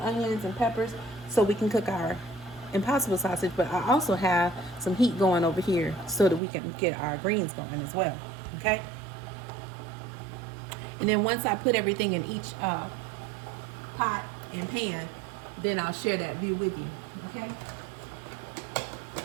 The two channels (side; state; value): left; drops out; at 6.4 s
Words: onions and peppers so we can cook our Impossible sausage. But I also have some heat going over here so that we can get our greens going as well. Okay? And then once I put everything in each pot and pan, then I'll share that view with you. Okay?